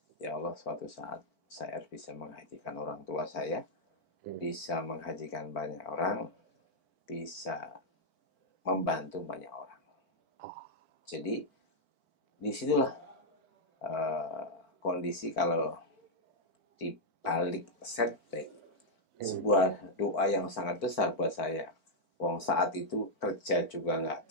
Ya Allah, suatu saat saya harus bisa menghajikan orang tua saya, bisa menghajikan banyak orang, bisa membantu banyak orang. Jadi disitulah kondisi kalau di balik setback, sebuah doa yang sangat besar buat saya. Wong saat itu kerja juga nggak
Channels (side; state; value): right; late; 4.5 ms